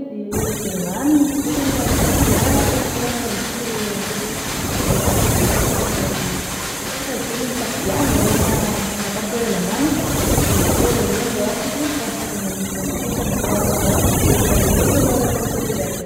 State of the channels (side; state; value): both; identical; correlation 1.00